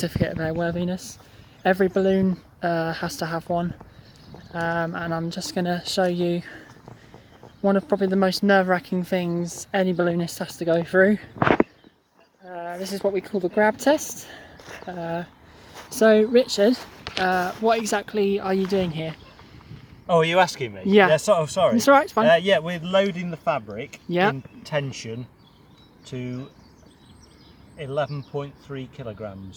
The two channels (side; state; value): both; identical; correlation 1.00